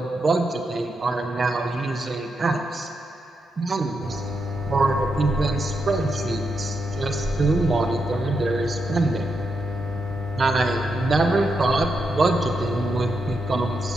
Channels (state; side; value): normal; both; correlation 0.84